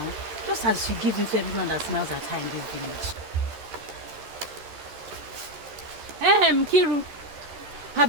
Just as she gives it to everyone that smiles at her in this village. Kiru,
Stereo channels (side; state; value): left; late; 13 ms